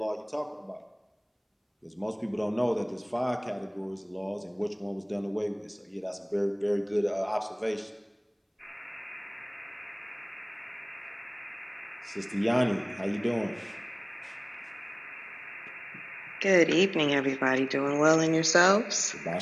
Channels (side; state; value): both; identical; correlation 1.00